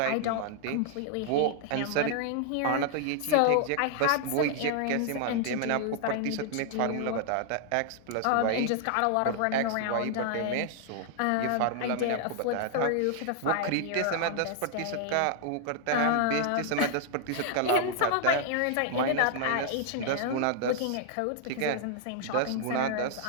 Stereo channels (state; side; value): different; both; correlation 0.00